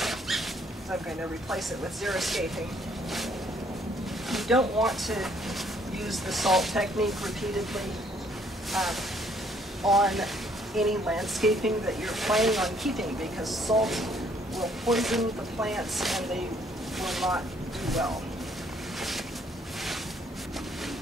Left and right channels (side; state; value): both; normal; correlation 0.65